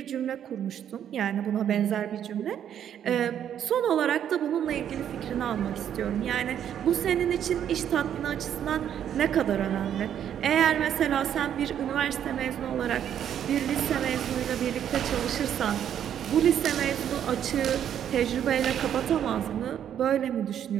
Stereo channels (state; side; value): quieter; left; 9.7 dB